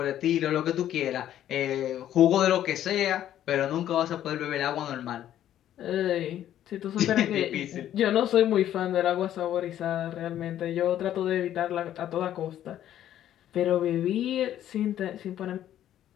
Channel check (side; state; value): right; quieter; 11.6 dB